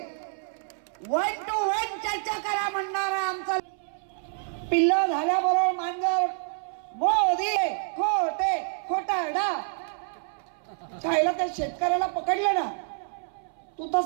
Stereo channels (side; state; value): left; silent; 60 dB below the other